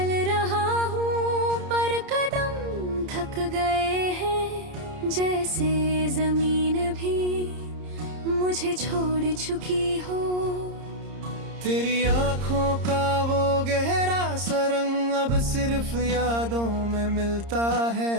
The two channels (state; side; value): late; left; 30 ms